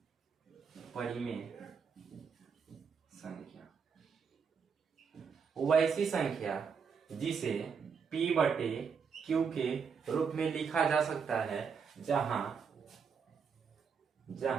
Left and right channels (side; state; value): left; quieter; 6.1 dB